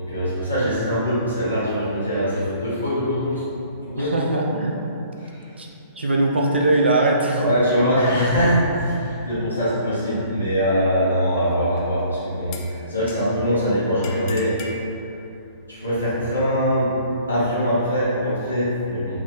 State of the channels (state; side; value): inverted; both; correlation -0.57